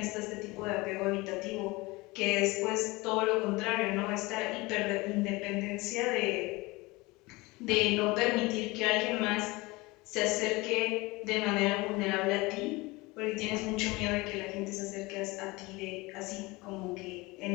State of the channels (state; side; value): quieter; right; 22.9 dB